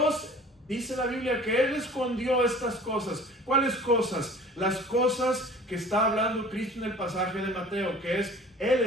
dice la Biblia que Él escondió estas cosas. ¿Cuáles cosas? Las cosas que está hablando Cristo en el pasaje de Mateo, que es, Él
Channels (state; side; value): normal; both; correlation 0.45